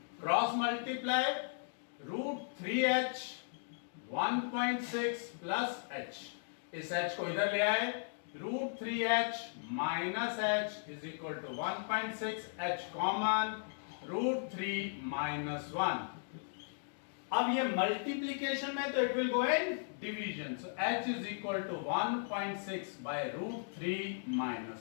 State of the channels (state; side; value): silent; right; digital silence